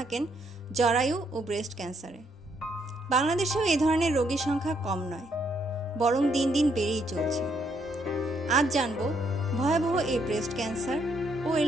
জরায়ু ও ব্রেস্ট ক্যান্সারে। বাংলাদেশেও এ ধরনের রোগীর সংখ্যা কম নয়, বরং দিন দিন বেড়েই চলছে। আজ জানব ভয়াবহ এই ব্রেস্ট ক্যান্সার ও এর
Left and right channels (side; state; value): both; normal; correlation 0.72